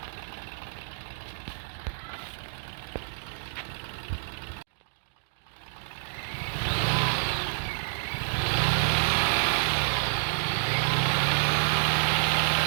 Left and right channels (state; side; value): silent; left; digital silence